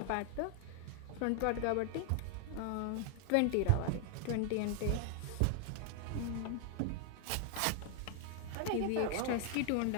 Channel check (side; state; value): both; different; correlation 0.00